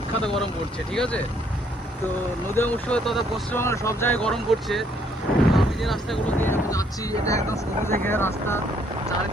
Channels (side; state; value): both; normal; correlation 0.67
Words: গরম পড়ছে, ঠিক আছে। তো নদীয়া মুর্শিদাবাদ তথা পশ্চিমবঙ্গের সব জায়গায় গরম পড়ছে। তো আমি যে রাস্তাগুলো দিয়ে এখন যাচ্ছি এটা একদম সবুজে ঘেরা রাস্তা,